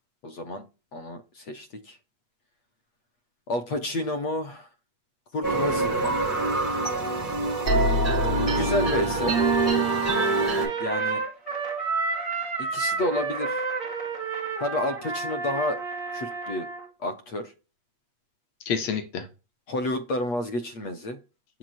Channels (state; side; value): late; right; 8.4 ms